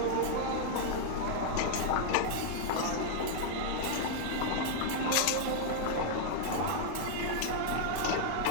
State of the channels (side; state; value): both; different; correlation -0.01